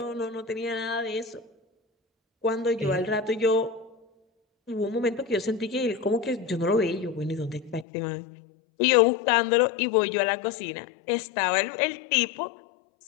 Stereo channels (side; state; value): right; drops out; at 7.9 s